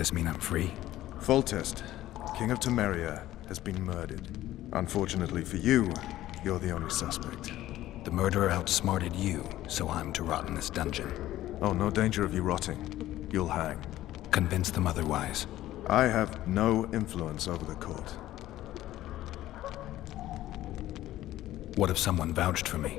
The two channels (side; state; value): right; quieter; 14.5 dB